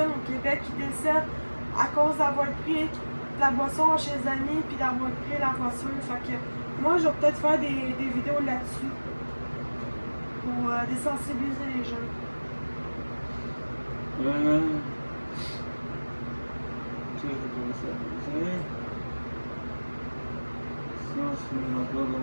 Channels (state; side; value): inverted; both; correlation -1.00